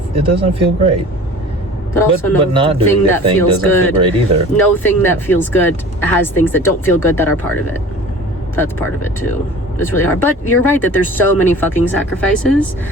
feel great. But also, but not doing the thing doesn't feel great either. No thing that feels good has things that don't feel good that are part of it. That's part of it too. It's really hard. But you're right that there's so many fucking sacrifices,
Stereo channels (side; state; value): both; normal; correlation 0.42